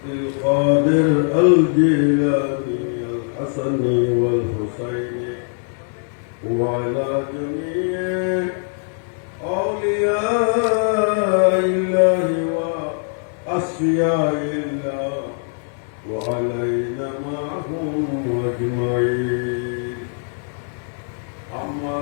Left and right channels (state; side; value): silent; right; digital silence